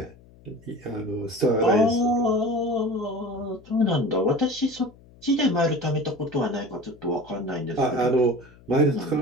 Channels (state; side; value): noise; left; hum, 25 dB below the sound